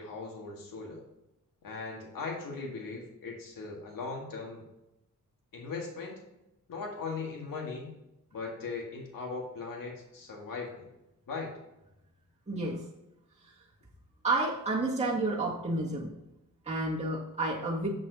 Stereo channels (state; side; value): normal; both; correlation 0.22